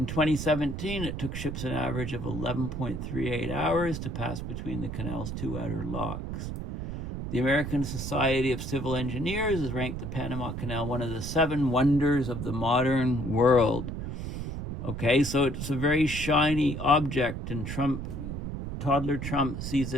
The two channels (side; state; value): right; noise; rumble, 5 dB below the sound